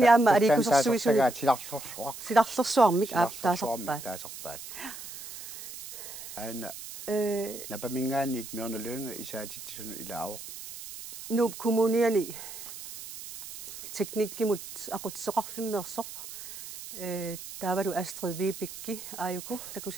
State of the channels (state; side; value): noise; right; hiss, 12 dB below the sound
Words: alikusersuisu silarlersuarmik taasarpaat. Aina napamingaanit Mørne Lynge isaatitsun ilaavaq. Nuup kommuniani teknikkimut aqutsoqarfimmeersoq taavalu Astrid Vibekki ajuku